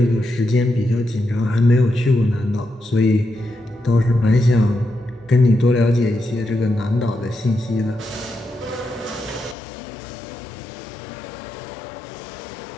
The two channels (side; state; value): right; drops out; at 9.6 s